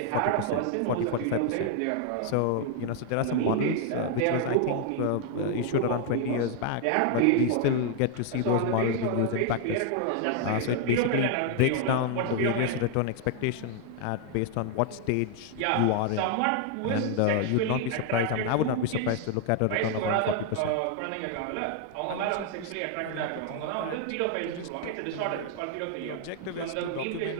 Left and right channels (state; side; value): different; both; correlation 0.00